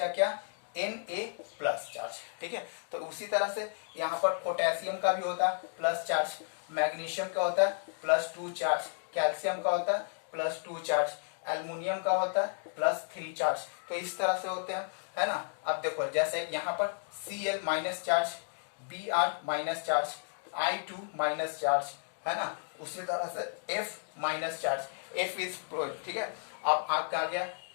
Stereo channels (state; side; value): silent; right; digital silence